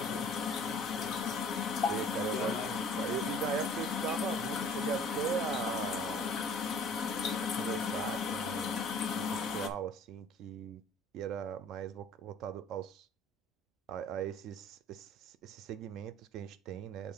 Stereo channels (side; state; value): both; normal; correlation 0.50